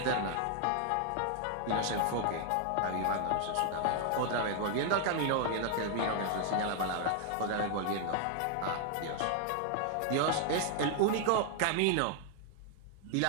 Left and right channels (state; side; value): different; both; correlation 0.00